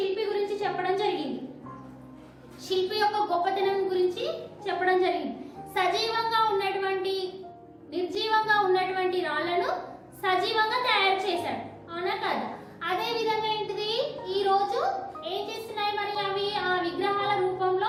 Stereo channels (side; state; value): both; identical; correlation 1.00